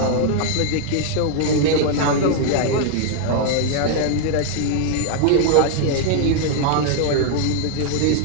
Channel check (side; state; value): both; different; correlation 0.00